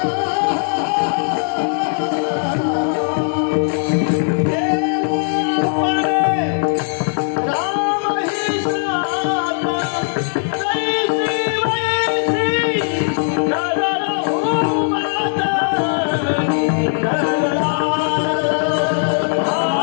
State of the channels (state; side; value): silent; right; digital silence